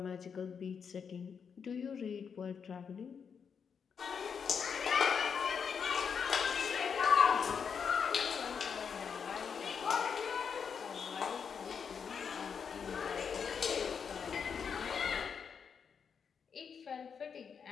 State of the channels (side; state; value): right; quieter; 6.6 dB